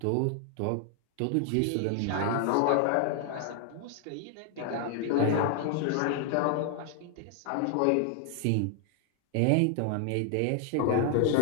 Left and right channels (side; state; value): both; different; correlation 0.00